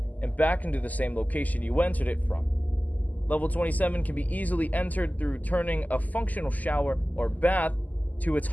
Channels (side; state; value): right; late; 0.079 ms